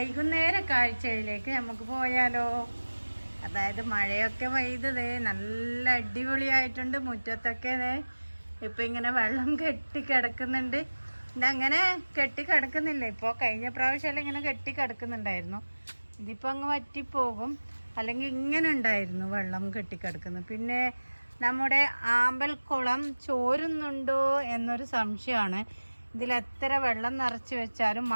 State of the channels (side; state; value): both; inverted; correlation -1.00